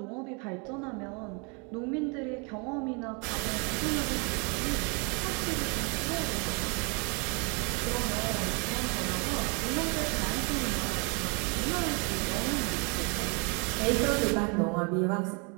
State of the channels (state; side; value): quieter; left; 33.3 dB